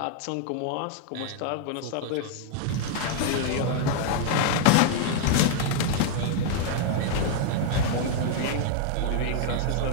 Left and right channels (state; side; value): different; both; correlation 0.00